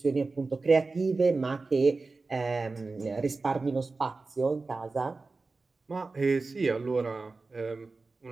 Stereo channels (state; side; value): quieter; left; 3.8 dB